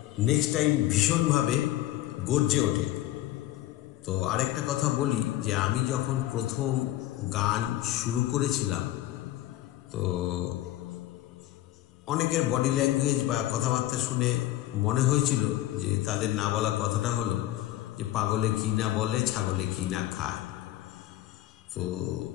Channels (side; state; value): right; quieter; 14.7 dB